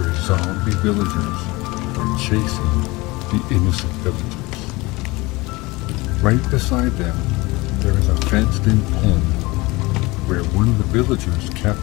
zombie villagers are chasing the innocent villagers. Right beside them, there is a fenced-in pen where one of the villagers kept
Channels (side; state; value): right; quieter; 22.6 dB